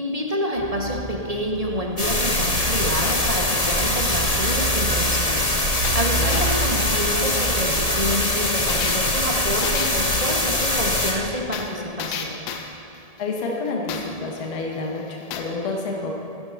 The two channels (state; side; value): late; left; 1.7 ms